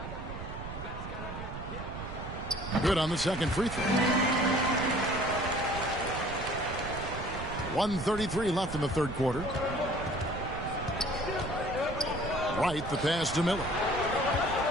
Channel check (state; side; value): noise; right; rumble, 9 dB below the sound